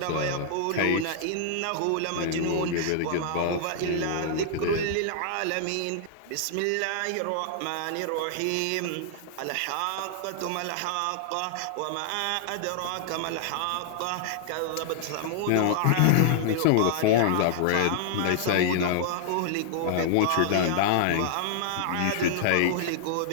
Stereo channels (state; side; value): different; both; correlation -0.01